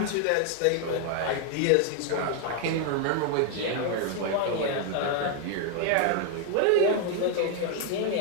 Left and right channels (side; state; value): both; different; correlation 0.00